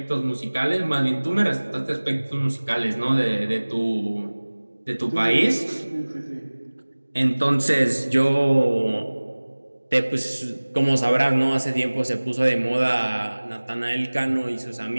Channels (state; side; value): inverted; both; correlation -1.00